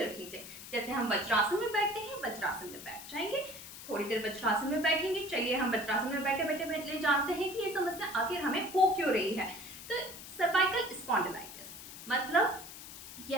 रख लीजिए। जैसे हम वज्रासन में बैठते हैं, वज्रासन में बैठ जाएंगे। थोड़ी देर वज्रासन में बैठेंगे। चलिए हम वज्रासन में बैठे बैठे बैठे जानते हैं कि ये समस्या आखिर हमें हो क्यों रही है। तो सर्वाइकल स्पॉन्डिलाइटिस मतलब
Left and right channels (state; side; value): noise; left; hiss, 13 dB below the sound